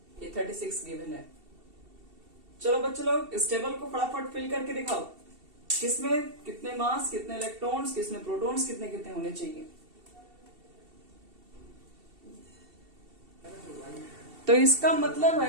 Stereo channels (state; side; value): late; left; 2.7 ms